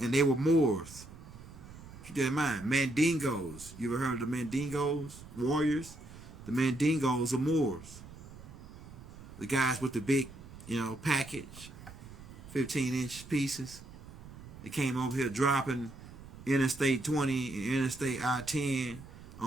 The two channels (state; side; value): noise; right; rumble, 16 dB below the sound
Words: they were Moors. Keep that in mind. Mandingos. You ever heard of the Mandingos? Warriors? The Mandingos are Moors. The guys with the big, package, 15-inch pieces. They came over here dropping Interstate 20 and Interstate I-10